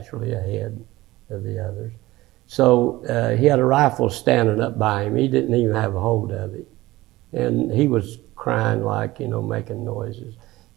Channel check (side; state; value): left; quieter; 18.2 dB